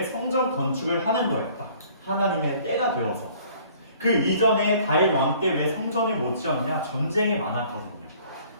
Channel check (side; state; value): both; inverted; correlation -0.55